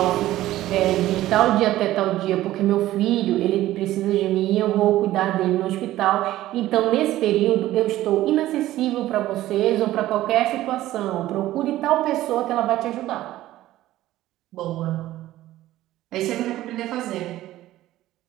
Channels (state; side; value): quieter; left; 15.0 dB